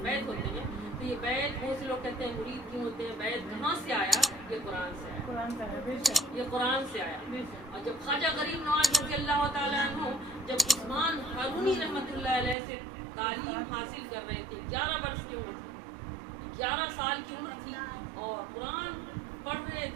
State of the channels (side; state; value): left; drops out; at 12.6 s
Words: بیعت ہوتے ہیں، تو یہ بیعت بہت سے لوگ کہتے ہیں مرید کیوں ہوتے ہیں، بیعت کہاں سے آیا؟ یہ قرآن سے آیا، یہ قرآن سے آیا۔ اور جب خواجہ غریب نواز رضی اللہ تعالیٰ عنہ جب عثمان ہارونی رحمۃ اللہ علیہ سے تعلیم حاصل کر رہے تھے، 11 برس کی عمر تھی، 11 سال کی عمر تھی، اور قرآن پڑھ رہے